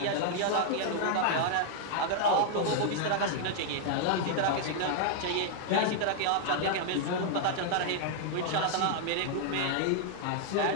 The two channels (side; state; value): both; different; correlation 0.00